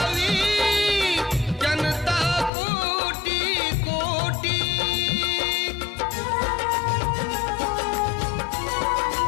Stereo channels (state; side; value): drops out; right; at 2.5 s